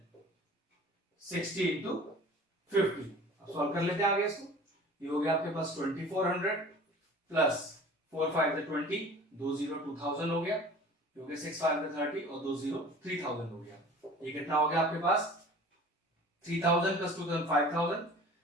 60 into 50। अब सॉल्व कर लेते हैं आगे इसको। ये हो गया आपके पास 2400 प्लस 4 5 20, 2 0 2000 हो गया, क्योंकि 6 5 30 और 2 0 3000 हो गया। ये कितना हो गया आपके पास? 3000 प्लस 2000 5000,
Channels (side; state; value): both; normal; correlation 0.43